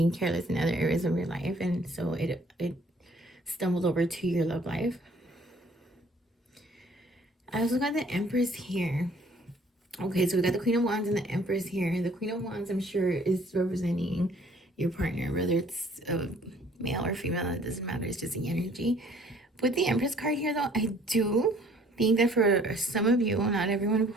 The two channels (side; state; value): both; normal; correlation 0.58